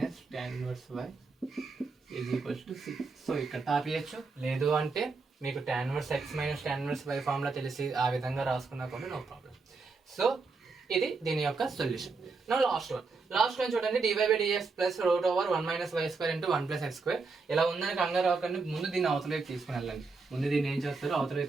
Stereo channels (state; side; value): quieter; left; 4.2 dB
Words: tan inverse y is equals to c. So ఇక్కడ తాపియచ్చు, లేదు అంటే మీకు tan inverse x minus tan inverse y formula తెలిసి ఆ విధంగా రాసుకున్నా కూడా నో ప్రాబ్లం. సో ఇది దీని యొక్క సొల్యూషన్. నా లాస్ట్ వన్ చూడండి, dy/dx plus root over 1 minus y square into 1 plus x square. ఇలా ఉందని కంగారు అవ్వకండి, ముందు దీన్ని అవతలకి తీసుకుని వెళ్ళండి. ముందు దీన్ని ఏం చేస్తారో అవతలకి